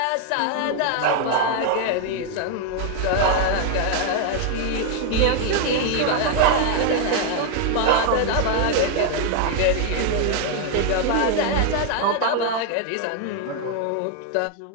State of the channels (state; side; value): different; both; correlation 0.00